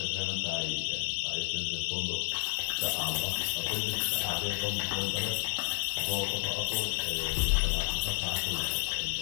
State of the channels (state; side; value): silent; right; digital silence